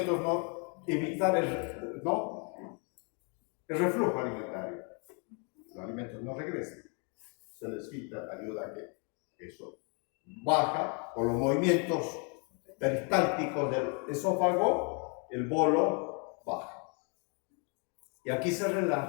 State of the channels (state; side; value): quieter; right; 36.9 dB